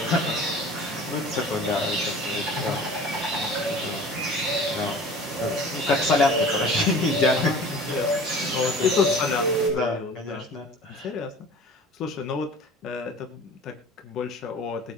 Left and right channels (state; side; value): normal; both; correlation 0.43